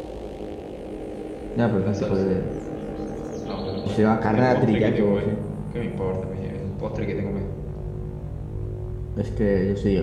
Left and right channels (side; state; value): both; identical; correlation 1.00